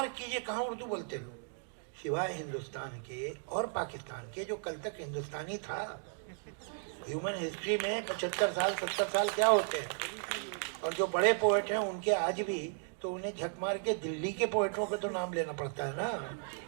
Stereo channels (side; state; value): left; silent; 54 dB below the other